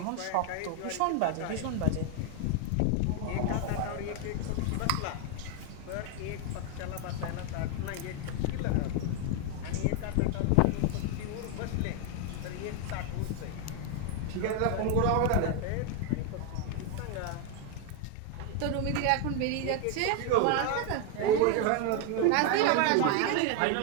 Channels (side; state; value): both; different; correlation 0.01